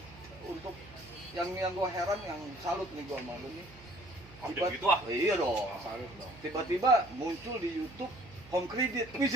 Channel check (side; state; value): right; noise; hum, 20 dB below the sound